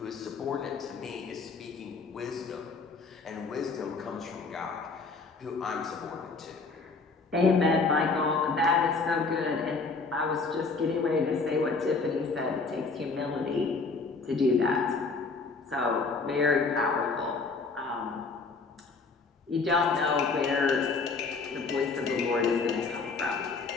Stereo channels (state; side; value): quieter; right; 4.2 dB